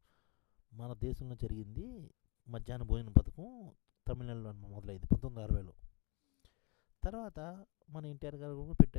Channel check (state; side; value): quieter; right; 30.2 dB